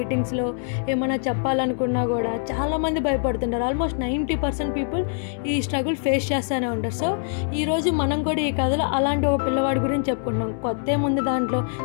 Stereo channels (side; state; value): right; silent; digital silence